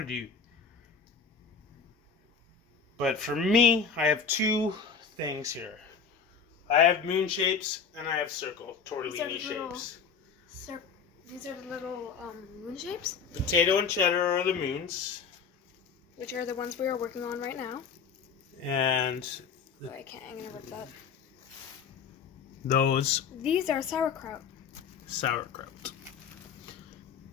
to do. But for me, I have two things here. I have moon shapes and I have circle tortellini shapes. These are the little moon shapes? Potato and cheddar are the moons. Which are the ones we are working on right now. And I'm gonna rip that. These are sauerkraut. Sauerkraut.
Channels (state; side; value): quieter; right; 6.0 dB